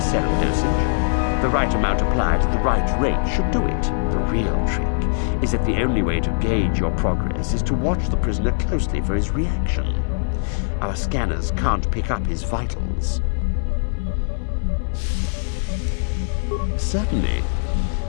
dosage. The right amount applied at the right rate should do it. The real trick is that the only way to gauge your progress is to watch the prisoner closely for his reaction. Our scanners can't pick up his vitals. Certainly.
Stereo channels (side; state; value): right; silent; digital silence